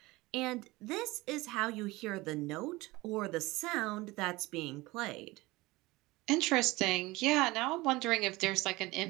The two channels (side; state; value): left; quieter; 21.0 dB